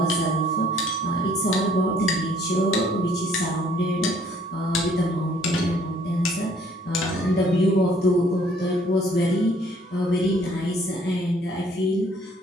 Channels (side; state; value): both; normal; correlation 0.61